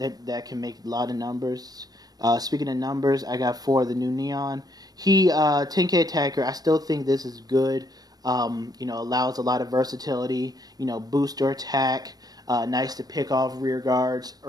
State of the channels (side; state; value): left; late; 0.19 ms